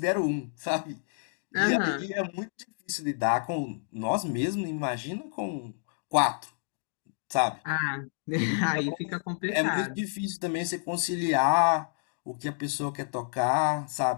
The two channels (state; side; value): silent; right; digital silence